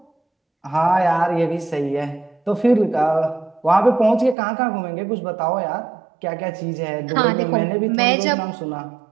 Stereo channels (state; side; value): drops out; left; at 4.4 s